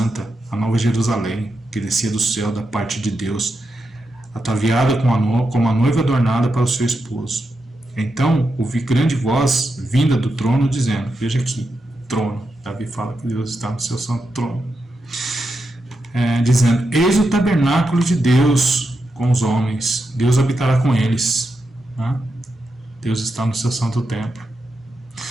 a nova Jerusalém, que descia do céu da parte de Deus, ataviada como a noiva adornada para o seu esposo. Então ouvi grande voz vinda do trono dizendo, veja aqui, trono, Davi fala que Deus está no seu santo trono, dizendo, eis o tabernáculo de Deus com os homens, Deus habitará com eles, né? Deus está no seu santo templo.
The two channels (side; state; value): both; normal; correlation 0.86